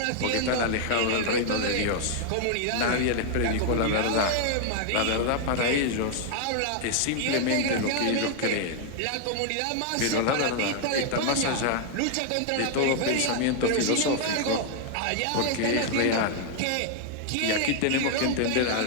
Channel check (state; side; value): different; both; correlation 0.00